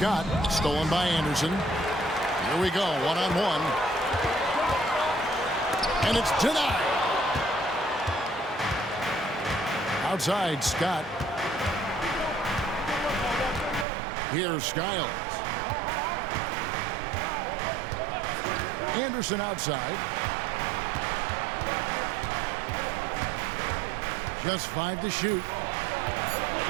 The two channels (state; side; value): drops out; left; at 13.9 s